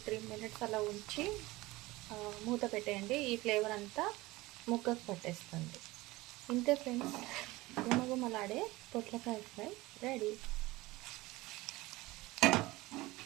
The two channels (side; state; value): left; quieter; 20.1 dB